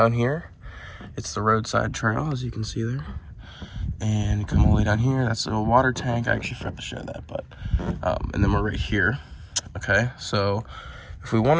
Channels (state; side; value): identical; both; correlation 1.00